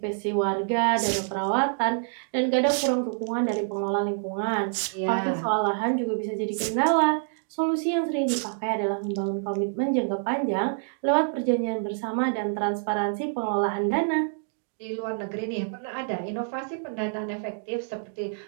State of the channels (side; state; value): left; silent; digital silence